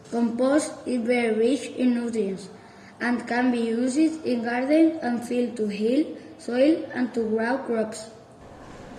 Compost is very rich in nutrients and can be used in gardens and fields to heal soil and to grow crops.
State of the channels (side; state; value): both; identical; correlation 1.00